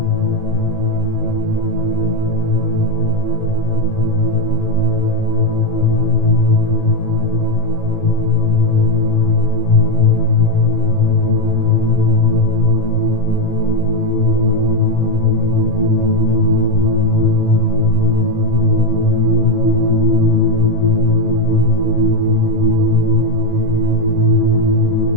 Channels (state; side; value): late; right; 1.9 ms